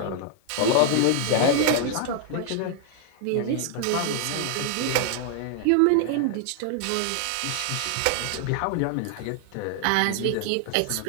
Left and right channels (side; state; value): both; different; correlation 0.00